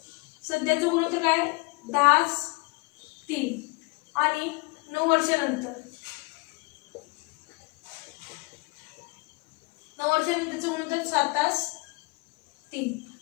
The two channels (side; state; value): right; quieter; 27.2 dB